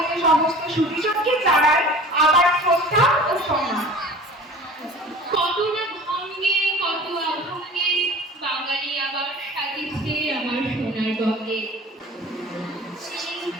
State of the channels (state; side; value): normal; both; correlation 0.42